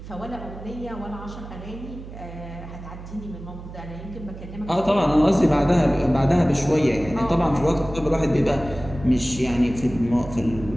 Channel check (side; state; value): right; noise; hum, 13 dB below the sound